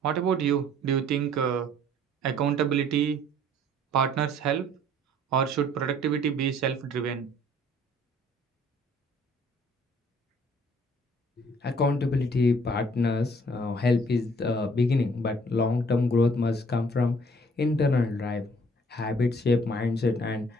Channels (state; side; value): normal; both; correlation 0.58